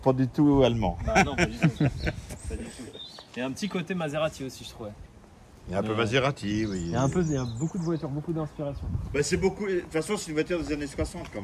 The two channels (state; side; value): identical; both; correlation 1.00